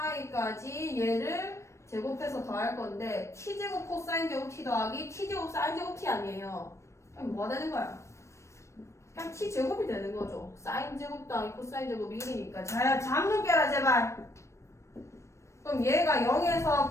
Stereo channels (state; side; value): late; right; 0.14 ms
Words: 얘를 제곱해서 더할 건데 t제곱 코사인 제곱 t 더하기 t제곱 사인 제곱 t 아니에요. 그럼 뭐가 되는 거야? 그냥 t제곱이 되는 거죠. 사인 제곱 더하기 코사인 제곱이 1이니까. 자, 잠좀 깨라 제발. 그럼 얘가 0에서